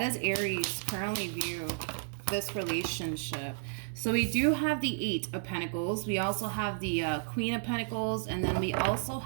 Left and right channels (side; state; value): left; silent; digital silence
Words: Aries currently view this relationship? So we do have the Eight of Pentacles. We also have the Queen of Pentacles, and then we also